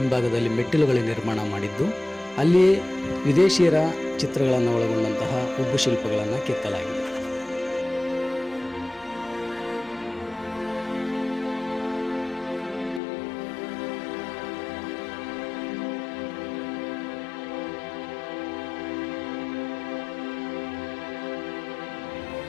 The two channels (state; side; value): drops out; right; at 13.0 s